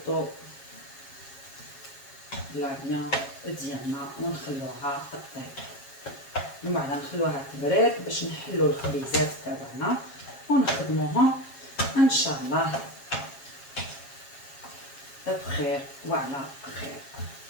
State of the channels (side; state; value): right; late; 7.4 ms